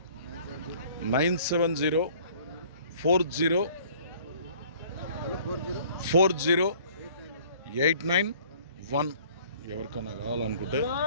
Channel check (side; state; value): both; inverted; correlation -0.54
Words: 9704040891. ఎవరికైనా కావాలనుకుంటే.